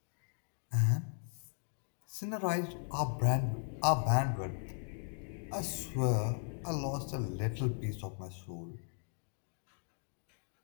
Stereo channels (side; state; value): right; silent; 53 dB below the other